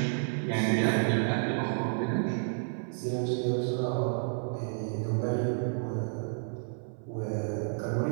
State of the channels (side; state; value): left; silent; 56 dB below the other